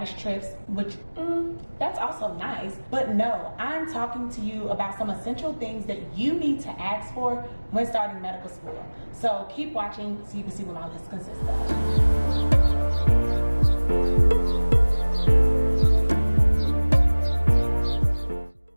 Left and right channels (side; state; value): both; inverted; correlation -1.00